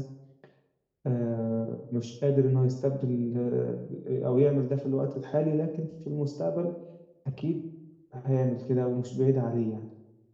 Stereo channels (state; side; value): identical; both; correlation 1.00